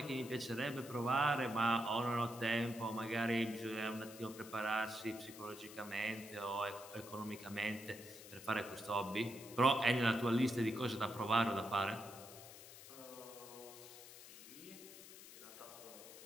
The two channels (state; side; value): noise; left; hiss, 15 dB below the sound